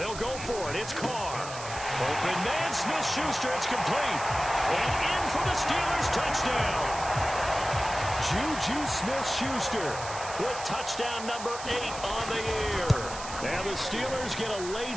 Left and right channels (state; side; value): noise; right; hiss, 11 dB below the sound